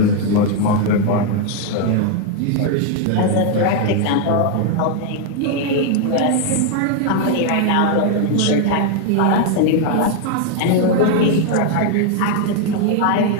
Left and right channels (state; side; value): different; both; correlation 0.00